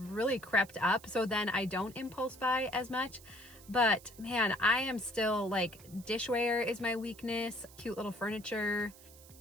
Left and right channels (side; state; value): right; noise; hiss, 21 dB below the sound